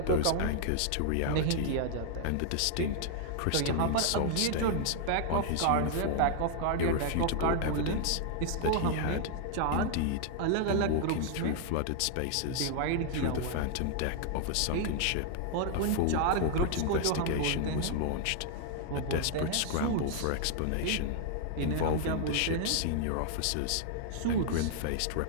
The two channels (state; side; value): different; both; correlation 0.00